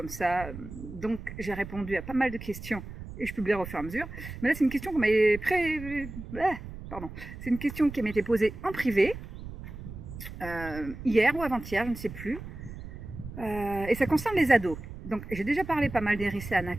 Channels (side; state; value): right; noise; rumble, 11 dB below the sound